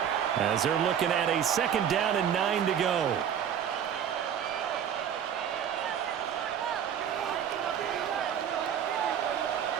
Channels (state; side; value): quieter; left; 8.8 dB